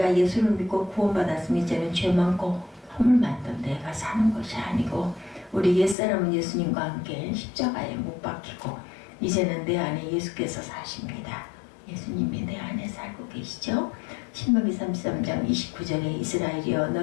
예수를 믿고 구원받았으면 이제는 죄 많고 허물 많던 내가 사는 것이 아니고 우리 옛사람은 예수님과 함께 십자가에 못 박히고 이제는 내 안에 예수께서 사십니다. 예수님이 내 안에 살고 계시죠. 신명기 33장 29절에 이스라엘이여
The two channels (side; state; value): right; drops out; at 6.0 s